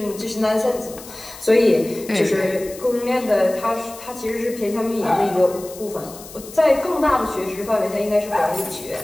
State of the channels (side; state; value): left; noise; hiss, 16 dB below the sound